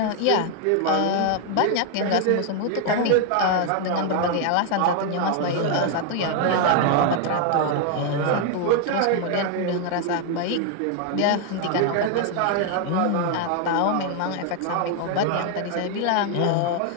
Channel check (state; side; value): different; both; correlation 0.00